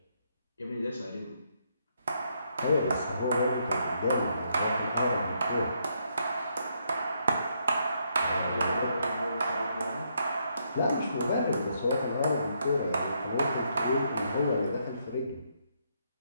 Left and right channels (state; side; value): inverted; both; correlation -0.75